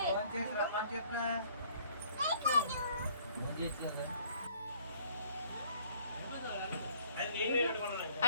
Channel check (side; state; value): both; inverted; correlation -0.59